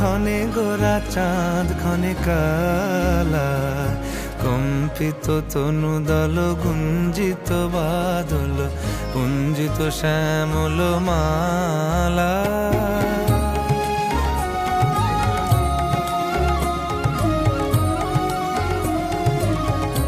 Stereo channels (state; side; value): identical; both; correlation 1.00